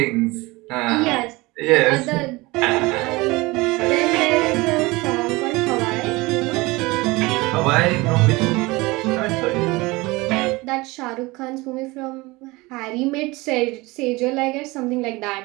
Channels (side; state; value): left; quieter; 22.6 dB